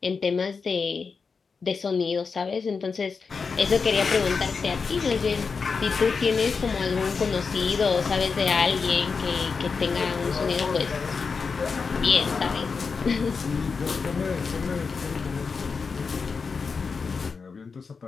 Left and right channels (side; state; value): right; quieter; 5.1 dB